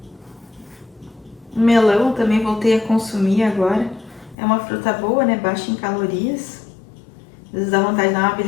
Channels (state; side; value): drops out; right; at 4.4 s